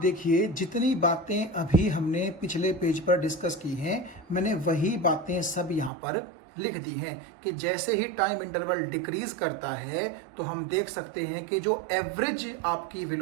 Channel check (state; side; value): drops out; left; at 5.9 s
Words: जितनी बातें अभी हमने पिछले पेज पर डिस्कस की हैं, मैंने वही बातें सब यहां पर लिख दी हैं कि जैसे ही टाइम इंटरवल डिक्रीज करता है तो हम देख सकते हैं कि जो एवरेज आपकी